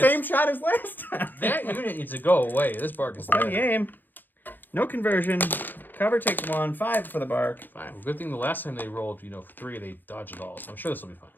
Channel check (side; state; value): right; late; 0.089 ms